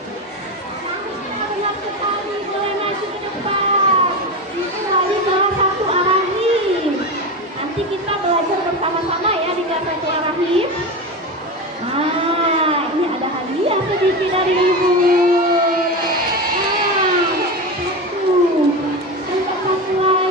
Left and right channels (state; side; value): normal; both; correlation 0.21